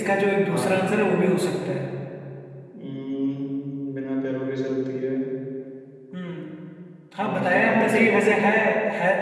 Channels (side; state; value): both; identical; correlation 1.00